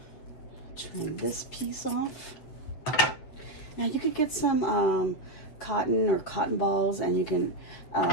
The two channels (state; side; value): late; right; 8.0 ms